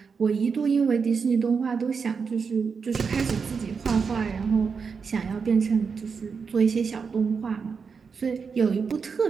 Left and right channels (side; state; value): left; quieter; 5.6 dB